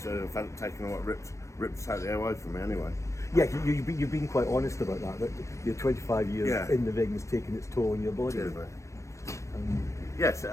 fact taken what ripped totally away from me anyway. Yeah, you've been quite honest about that your 25 years in the ring has taken its toll on your body. Yes, it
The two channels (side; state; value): right; late; 0.15 ms